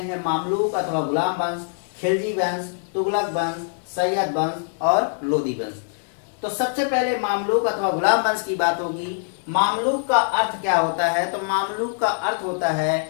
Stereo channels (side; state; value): right; silent; digital silence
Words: मामलूक अथवा गुलाम वंश, खिलजी वंश, तुगलक वंश, सैयद वंश और लोदी वंश। तो सबसे पहले मामलूक अथवा गुलाम वंश की बात होगी। मामलूक का अर्थ क्या होता है? तो मामलूक का अर्थ होता है